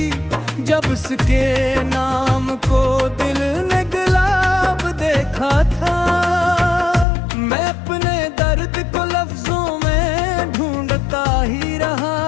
जब उसके नाम को दिल ने गुलाब देखा था। मैं अपने दर्द को लफ्जों में ढूंढता ही रहा,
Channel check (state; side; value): drops out; right; at 7.1 s